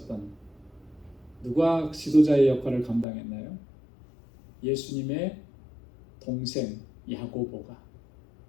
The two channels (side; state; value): right; drops out; at 3.1 s